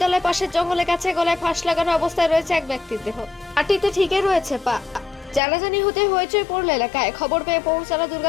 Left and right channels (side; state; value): right; drops out; at 5.4 s